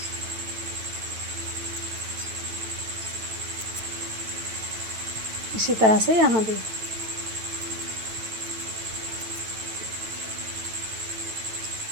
इसी तरह से यहाँ भी।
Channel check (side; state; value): left; late; 9.1 ms